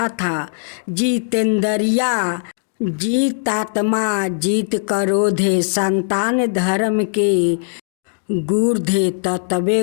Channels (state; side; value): silent; right; 60 dB below the other